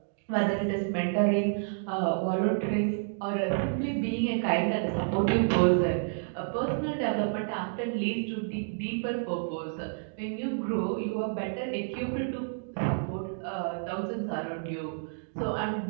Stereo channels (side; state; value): left; silent; digital silence